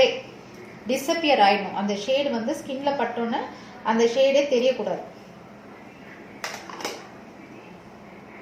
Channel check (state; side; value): identical; both; correlation 1.00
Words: டிஸப்பியர் ஆயிடும். அந்த ஷேடு வந்து ஸ்கின்ல பட்டோன்னே அந்த ஷேடே தெரியக்கூடாது.